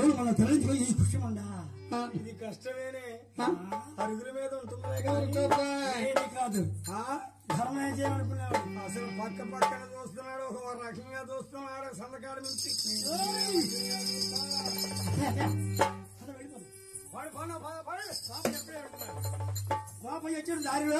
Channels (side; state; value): both; identical; correlation 1.00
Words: మనం తరలించుకొని ఈ కృష్ణమండా. ఇది కష్టమేనే, అరుగుల మీద ఉంటుంది కాదు. ధర్మం చేయమనుకున్నాడు. అసలు పక్కన చూస్తున్నాడు, ఒక రకంగా చూస్తున్నాడు. సందకాడు నుంచి గోపయ్య వచ్చాడు